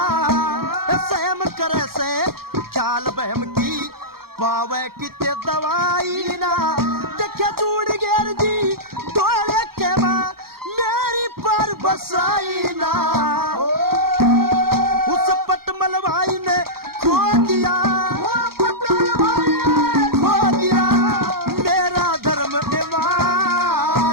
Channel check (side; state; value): left; late; 0.94 ms